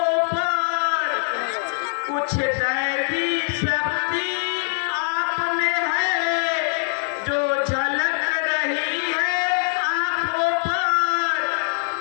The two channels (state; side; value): silent; right; 64 dB below the other